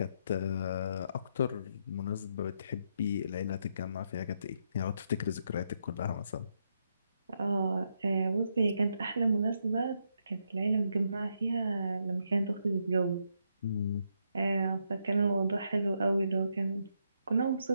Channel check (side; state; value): both; inverted; correlation -0.79